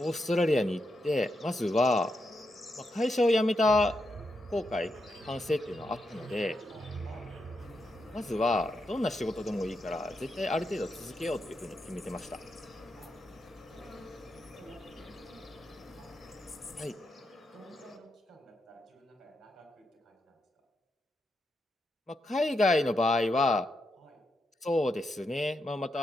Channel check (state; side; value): normal; both; correlation 0.84